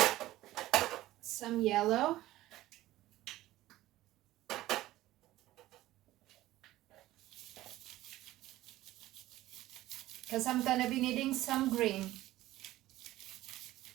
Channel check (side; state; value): left; quieter; 16.0 dB